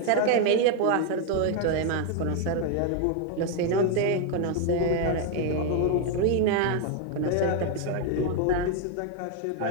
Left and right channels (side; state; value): both; different; correlation 0.01